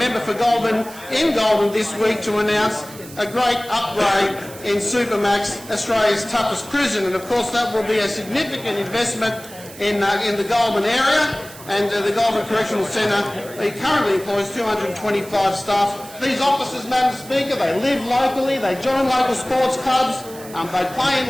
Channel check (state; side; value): noise; right; hiss, 17 dB below the sound